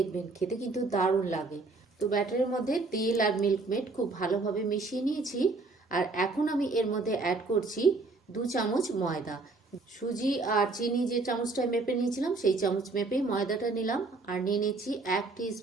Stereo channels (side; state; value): left; quieter; 3.6 dB